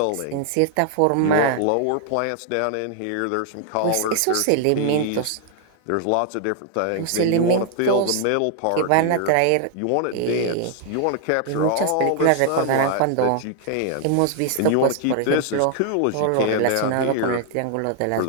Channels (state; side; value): different; both; correlation 0.00